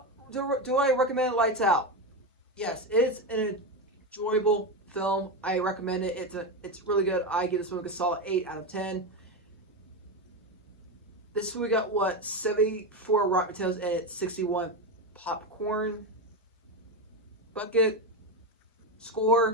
recommend Lights Out? Yes, it's an enjoyable film. I recommend it. It's really good. I give this movie a solid 8 out of 10. This movie got 74 Rotten Tomatoes and it's 61 popcorn bucket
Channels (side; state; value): both; normal; correlation 0.14